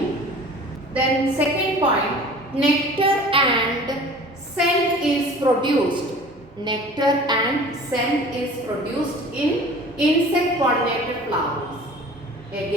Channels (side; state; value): both; normal; correlation 0.44